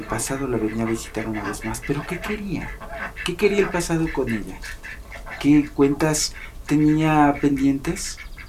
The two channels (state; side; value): identical; both; correlation 1.00